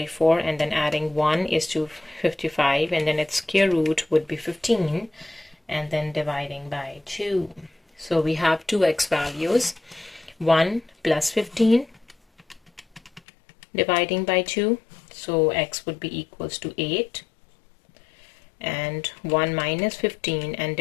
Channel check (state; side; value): drops out; right; at 13.2 s